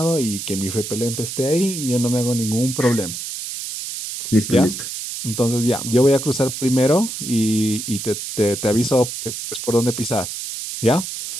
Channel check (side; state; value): right; noise; hiss, 7 dB below the sound